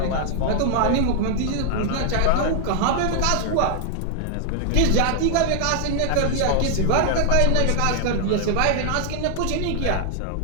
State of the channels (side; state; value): both; different; correlation 0.00